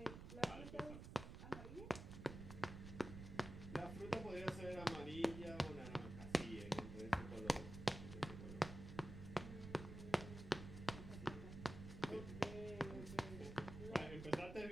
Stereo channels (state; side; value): noise; right; rumble, 9 dB below the sound